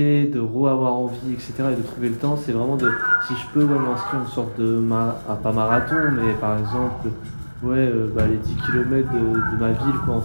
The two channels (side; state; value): both; inverted; correlation -1.00